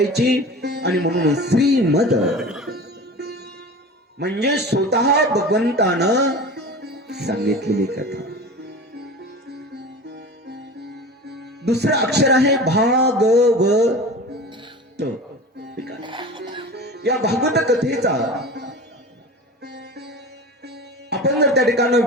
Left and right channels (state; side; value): normal; both; correlation 0.34